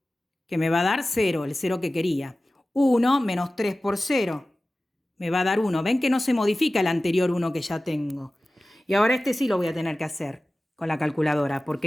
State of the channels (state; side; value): normal; both; correlation 0.96